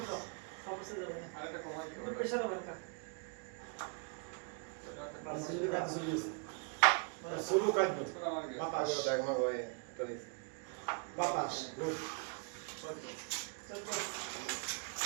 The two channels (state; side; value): quieter; left; 37.7 dB